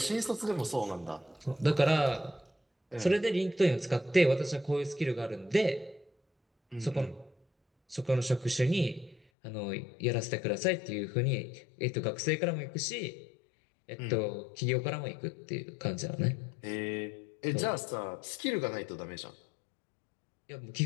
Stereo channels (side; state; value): right; drops out; at 9.2 s